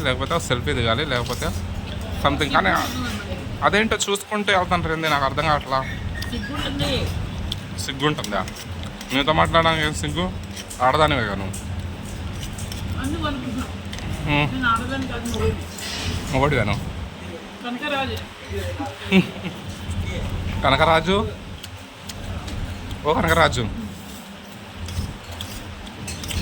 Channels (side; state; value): both; identical; correlation 1.00